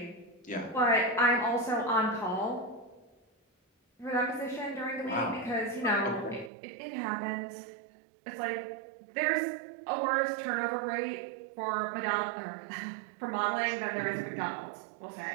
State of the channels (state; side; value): drops out; left; at 6.5 s